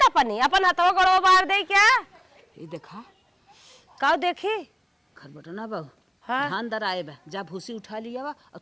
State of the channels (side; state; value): both; identical; correlation 1.00